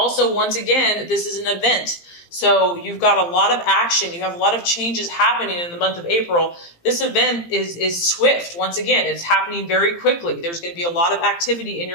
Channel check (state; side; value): late; right; 17 ms